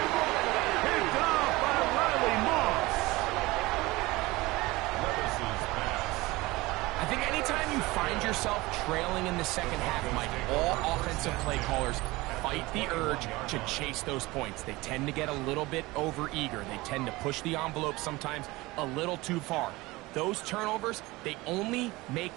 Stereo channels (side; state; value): left; quieter; 21.0 dB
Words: Picked off by Riley Moss. Levis's pass. I think anytime you find yourself trailing in the second half, Mike, all offensive play callers fight the urge to chase those points. They tend to get a little bit over-eager. They tend to push the envelope sometimes a little too far. Those turnovers, they only make